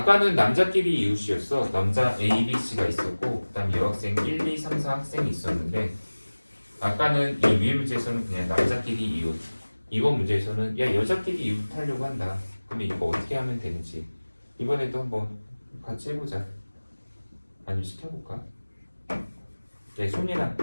남자끼리 이웃이었어. 남자 A, B, C가 있었고 그 다음 여학생 1, 2, 3, 4 학생이 있었는데 아까는 이 위의 문제에서는 그냥 남자끼리 이웃. 이번 문제에서는 야 여자끼리 이웃 하려고 한다. 그러면 이거 어떻게 하면 되는지 이번에도 한번 같이 해보자. 아니면 시켜볼까? 네, 손이나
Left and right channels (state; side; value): inverted; both; correlation -1.00